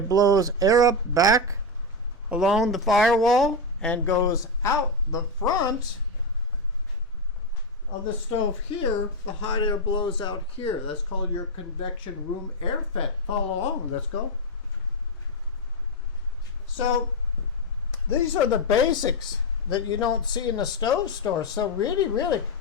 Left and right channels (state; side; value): normal; both; correlation 0.07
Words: blows air up back along the firewall and goes out the front of the stove here. The hot air blows out here. That's called your convection room air vent. Follow along. Let's go. So these are the basics that you don't see in the stove store. So really,